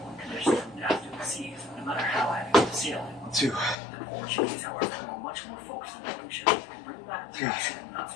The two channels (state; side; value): drops out; right; at 3.8 s